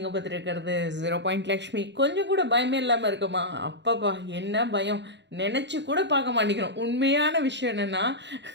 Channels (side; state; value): left; late; 0.52 ms